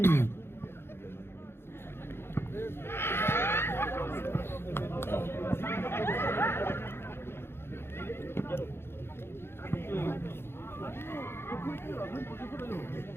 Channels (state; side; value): late; right; 0.11 ms